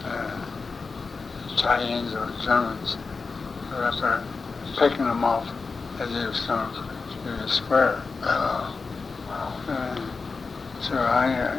tie-ins or Germans who were up there picking them off as they was coming through the square. So I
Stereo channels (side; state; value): right; quieter; 4.4 dB